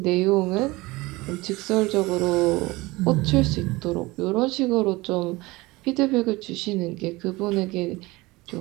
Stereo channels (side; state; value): left; quieter; 21.7 dB